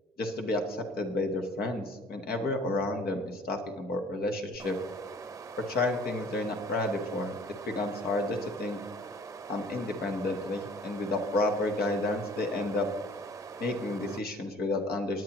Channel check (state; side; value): normal; both; correlation 0.52